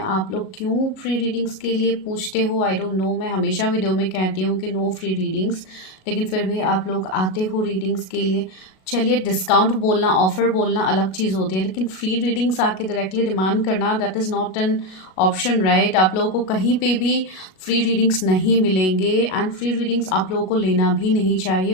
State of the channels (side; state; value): right; late; 37 ms